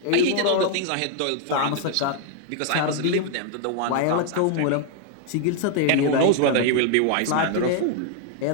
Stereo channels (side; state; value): both; different; correlation 0.00